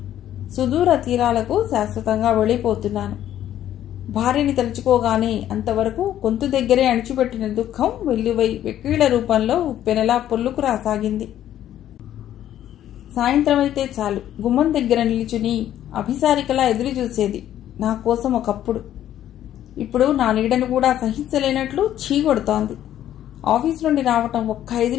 సుదూర తీరాలకు శాశ్వతంగా వెళ్ళిపోతున్నాను. భార్యని తలుచుకోగానే అంతవరకు గొంతు దగ్గరే అణిచిపెట్టిన దుఃఖం వెల్లువై వెక్కీళ్ల రూపంలో ఉప్పెనలా పొల్లుకు రాసాగింది. సాయంత్రం అయితే చాలు గుమ్మం దగ్గర నిలుచుని అభిసారికలా ఎదురు చూసేది నా కోసం ఒకప్పుడు. ఇప్పుడు నా నీడను కూడా సహించలేనట్లు చీగొడుతోంది. ఆఫీస్ నుండి రావటం ఒక్క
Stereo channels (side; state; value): right; quieter; 11.7 dB